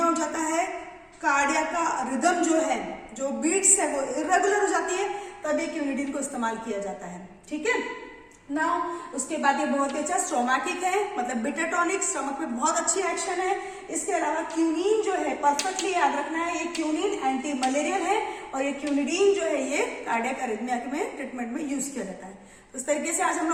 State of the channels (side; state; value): both; identical; correlation 1.00